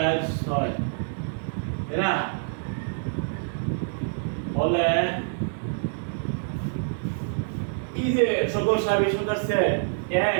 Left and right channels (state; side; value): silent; left; 58 dB below the other